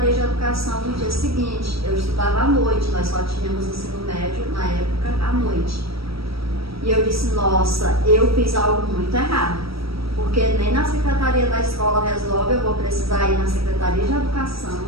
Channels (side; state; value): left; late; 0.76 ms